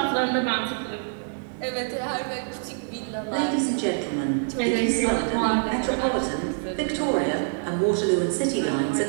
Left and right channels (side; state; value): left; silent; digital silence